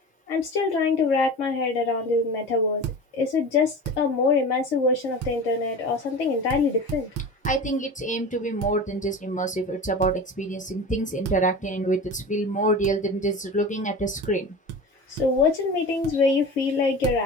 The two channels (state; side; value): normal; both; correlation 0.33